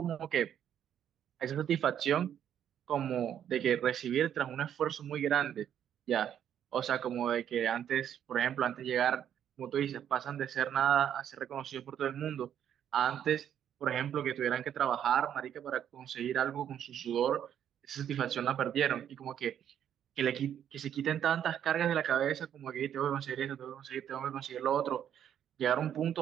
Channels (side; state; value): left; quieter; 9.6 dB